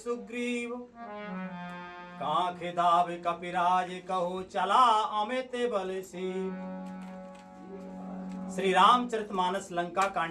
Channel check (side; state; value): both; identical; correlation 1.00